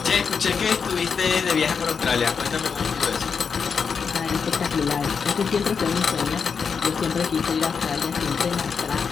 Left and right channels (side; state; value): right; quieter; 5.9 dB